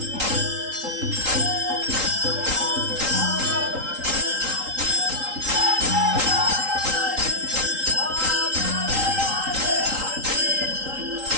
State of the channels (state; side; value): late; left; 3.8 ms